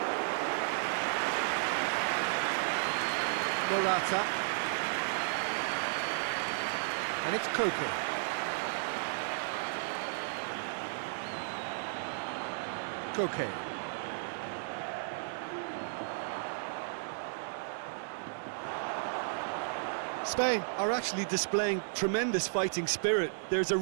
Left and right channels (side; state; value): left; silent; 55 dB below the other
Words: Morata. And it's Koke. Koke. Spain are actually displaying tremendous fighting spirit. There's a